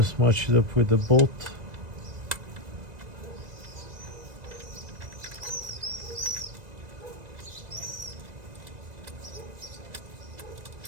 match it up with the bolt.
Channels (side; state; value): left; late; 1.9 ms